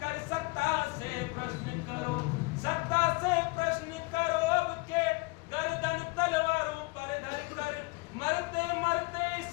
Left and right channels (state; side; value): quieter; right; 25.8 dB